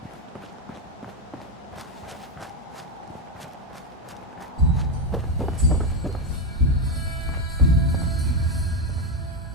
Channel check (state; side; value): normal; both; correlation 0.08